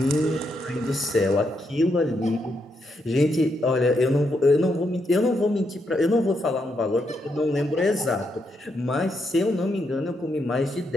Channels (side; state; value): both; normal; correlation 0.80